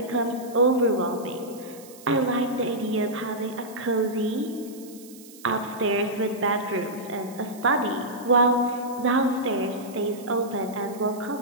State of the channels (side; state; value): right; noise; hiss, 20 dB below the sound